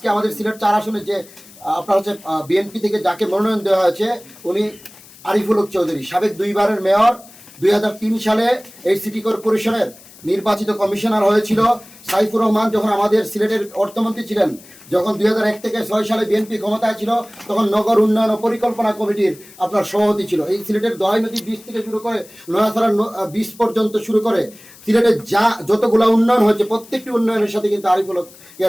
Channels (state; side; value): noise; left; hiss, 22 dB below the sound